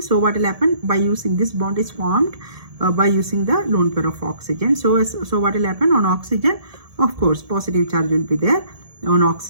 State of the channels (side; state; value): left; late; 1.7 ms